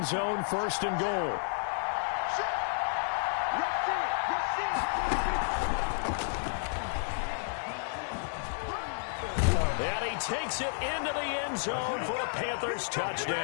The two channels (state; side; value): silent; right; digital silence